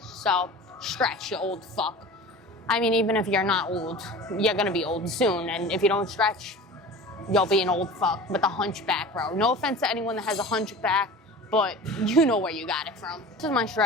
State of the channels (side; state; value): both; normal; correlation 0.37